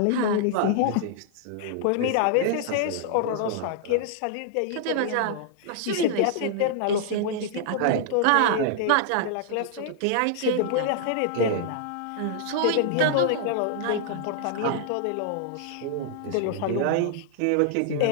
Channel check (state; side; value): different; both; correlation -0.01